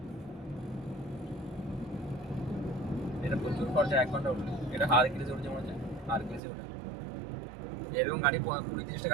এটা প্রচুর খরচা 1 ঘন্টা উঠলে। এটা হারকিলিসে উঠছে মনে হচ্ছে হারকিলিসে উঠে এরকম গাড়ি 20-30টা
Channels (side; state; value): left; drops out; at 6.4 s